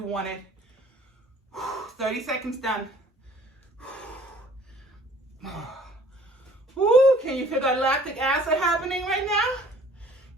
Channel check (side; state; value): both; normal; correlation 0.54